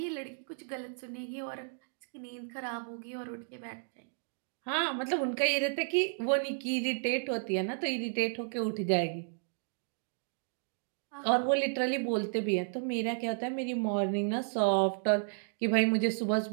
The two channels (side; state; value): left; silent; digital silence